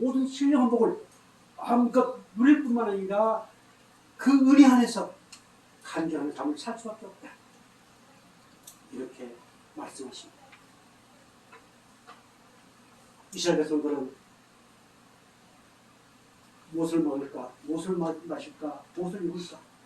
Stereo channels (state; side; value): identical; both; correlation 1.00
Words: 신령한 복을 마음껏 누릴 뿐만 아니라 그 은혜 안에서 간절한 삶을 살 수밖에 없다. 이렇게 말씀하십니다. 이스라엘 백성들은 무엇을 먹을까, 무엇을 마실까, 무엇을 입을까